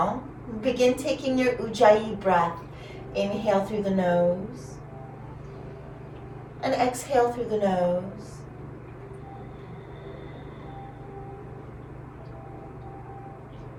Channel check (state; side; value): identical; both; correlation 1.00